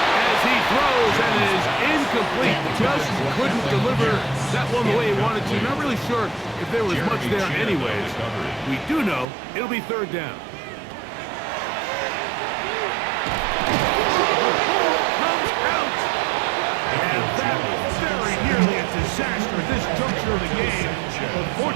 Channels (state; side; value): drops out; left; at 9.2 s